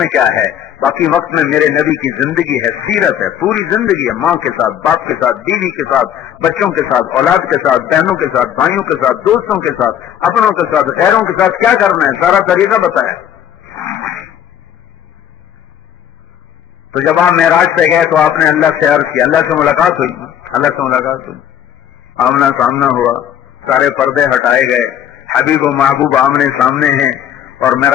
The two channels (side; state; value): right; quieter; 10.0 dB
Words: کیا ہے؟ باقی وقت میں میرے نبی کی زندگی ہے, سیرت ہے, پوری زندگی ہے. ماں کے ساتھ, باپ کے ساتھ, بیوی کے ساتھ, بچوں کے ساتھ, اولاد کے ساتھ, بہنوں کے ساتھ, بھائیوں کے ساتھ, دوستوں کے ساتھ, اپنوں کے ساتھ, غیروں کے ساتھ کیا کرنا ہے, سارا طریقہ بتایا. تو جب آپ معراج پہ گئے تو آپ نے اللہ سے عرض کیا, اللہ سے ملاقات ہوئی, آمنا سامنا ہوا, سارے پردے ہٹائے گئے, حبیب و محبوب آمنے سامنے ہیں اور